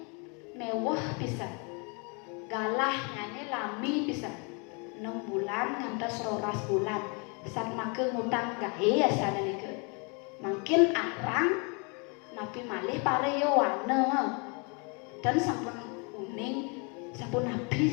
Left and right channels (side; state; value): right; quieter; 33.7 dB